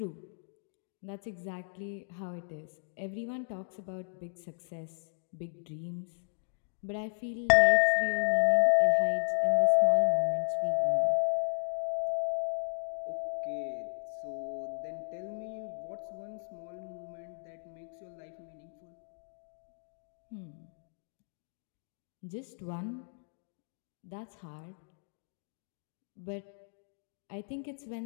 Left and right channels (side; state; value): right; silent; digital silence